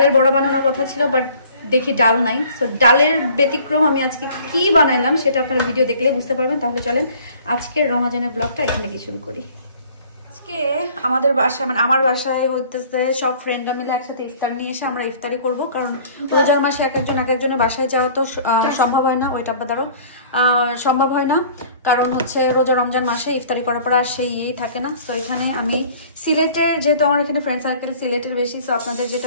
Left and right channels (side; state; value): both; inverted; correlation -0.51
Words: বড়া বানানোর কথা ছিল, বাট দেখি ডাল নাই। সো ডালের ব্যতিক্রম আমি আজকে কি বানাইলাম সেটা আপনারা ভিডিও দেখলে বুঝতে পারবেন। তাহলে চলেন আজকের রমজানের ব্লগটা এখান থেকে শুরু করি। আজকে আমাদের বাসায় মানে আমার বাসায় হইতেছে সব ফ্রেন্ডরা মিলে একসাথে ইফতার নিয়ে এসে আমরা ইফতারি করব। কারণ রোজার মাসে এক একজনের বাসায় যাওয়া তো সম্ভব হয় না, ওইটা বাদারও সম্ভব হয় না। কারণ হচ্ছে রোজা রমজান মাসে ইফতারি করার পর আর সেই ইয়েই থাকে না। তো এখানে আমি সিলেটের, যেহেতু আমার এখানে ফ্রেন্ড সার্কেল সিলেটের বেশি, তো আপনাদের